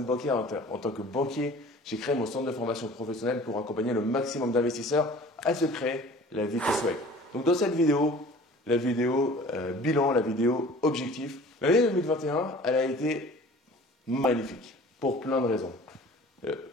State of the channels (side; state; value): both; normal; correlation 0.46